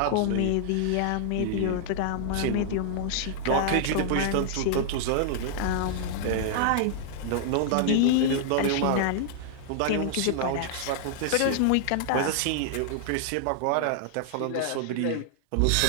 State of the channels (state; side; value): different; both; correlation -0.01